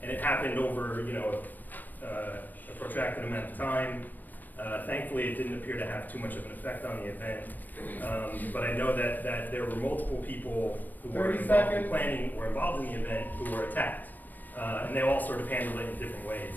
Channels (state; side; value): late; right; 0.088 ms